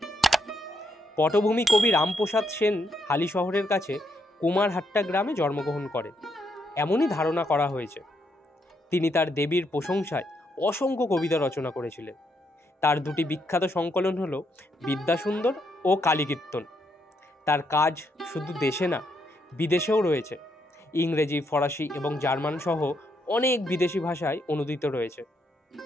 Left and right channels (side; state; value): both; normal; correlation 0.77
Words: পটভূমি কবি রামপ্রসাদ সেন হালিশহরের কাছে কুমারহাট্টা গ্রামে জন্মগ্রহণ করেন, এমনই ধারণা করা হয়েছে। তিনি তার দেবীর প্রশংসায় অসংখ্য কবিতা রচনা করেছিলেন। তার দুটি বিখ্যাত সংকলন হল বিদ্যাসুন্দর ও কালীকীর্তন। তার কাজ শুধু দেশে না, বিদেশেও রয়েছে। ইংরেজি, ফরাসি এবং জার্মান সহ অনেক বিদেশি ভাষায় অনুদিত রয়েছে।